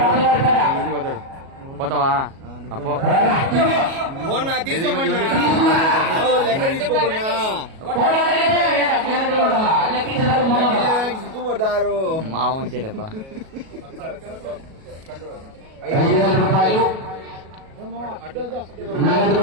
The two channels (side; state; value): left; late; 37 ms